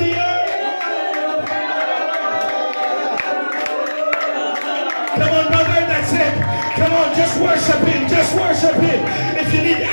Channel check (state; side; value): inverted; both; correlation -1.00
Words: the earth. Come on, brother, that's it. Come on, just worship Him. Just worship Him. If you need